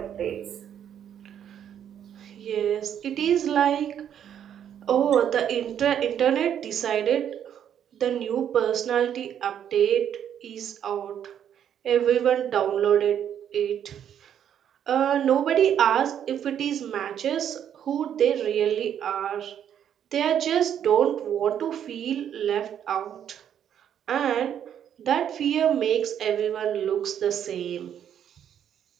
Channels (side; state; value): left; quieter; 9.4 dB